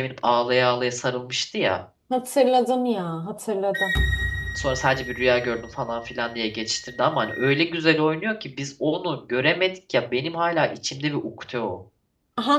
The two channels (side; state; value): both; identical; correlation 1.00